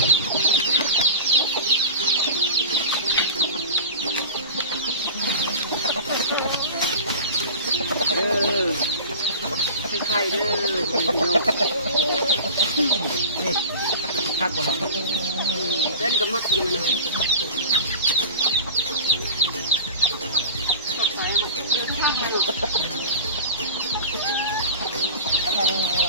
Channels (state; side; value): inverted; both; correlation -0.34